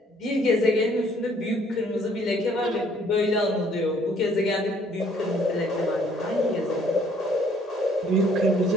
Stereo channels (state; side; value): normal; both; correlation 0.62